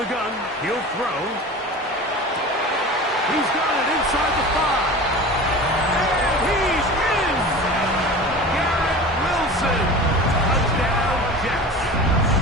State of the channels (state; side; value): normal; both; correlation 0.35